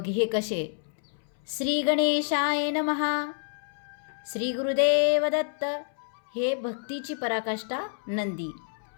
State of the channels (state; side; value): silent; right; 59 dB below the other